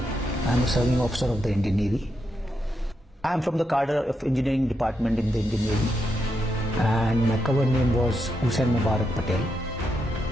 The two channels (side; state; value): both; normal; correlation 0.83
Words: I am a serving officer of the Indian Navy. I am from the cadre of engineering department in the Indian Navy, and my cover name was Hussain Mubarak Patel,